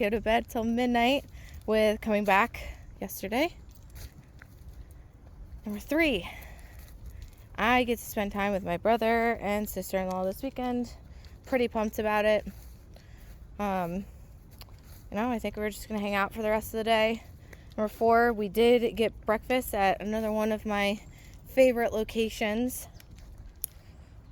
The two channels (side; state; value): both; identical; correlation 1.00